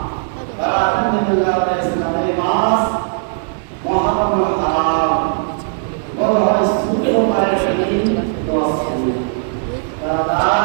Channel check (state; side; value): silent; left; digital silence